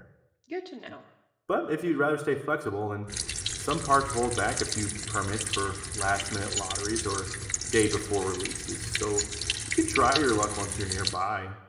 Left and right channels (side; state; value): both; identical; correlation 1.00